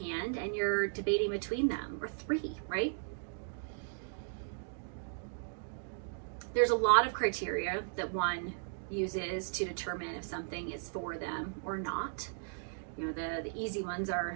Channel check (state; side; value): silent; left; digital silence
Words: hand and you're debating between them, or 3, right? There's a lot of criteria that one uses to determine if something is for them or not. You know, the easy ones